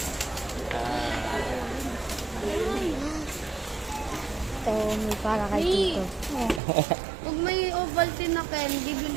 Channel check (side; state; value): left; drops out; at 6.6 s